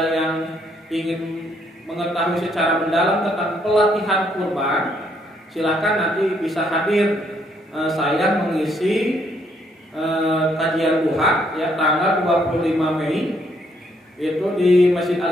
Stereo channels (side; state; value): both; normal; correlation 0.71